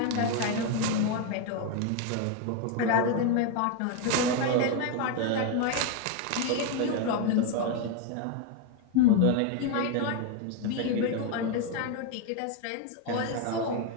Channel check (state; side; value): different; both; correlation 0.01